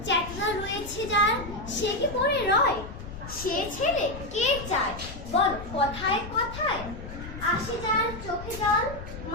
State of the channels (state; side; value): noise; left; rumble, 11 dB below the sound